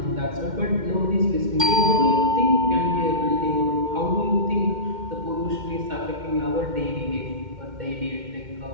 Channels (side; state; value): left; late; 2.1 ms